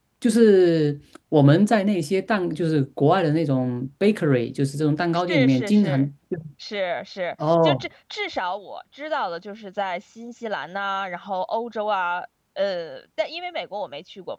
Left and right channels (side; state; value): both; identical; correlation 1.00